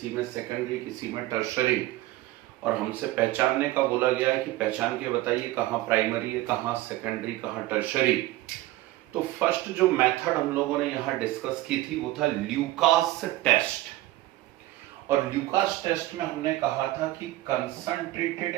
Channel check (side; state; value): left; quieter; 16.9 dB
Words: में सेकेंडरी, किसी में टर्शरी, और हमसे पहचानने का बोला गया है कि पहचान के बताइए कहाँ प्राइमरी है, कहाँ सेकेंडरी, कहाँ टर्शरी। तो फर्स्ट जो मेथड हम लोगों ने यहाँ डिस्कस की थी वो था ल्यूकास टेस्ट। और ल्यूकास टेस्ट में हमने कहा था कि concentrated